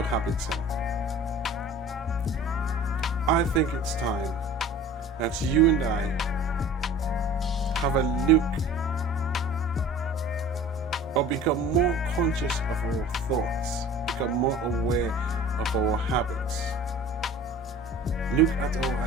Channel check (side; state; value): both; normal; correlation 0.43